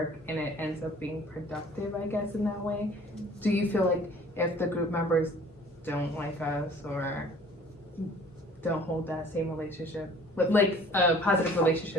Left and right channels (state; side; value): normal; both; correlation 0.51